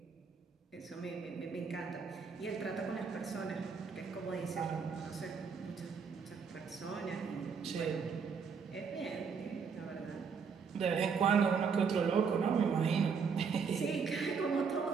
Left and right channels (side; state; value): left; quieter; 5.9 dB